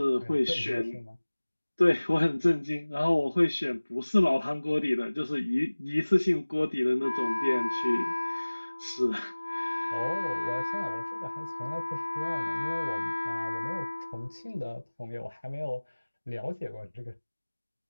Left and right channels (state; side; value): inverted; both; correlation -1.00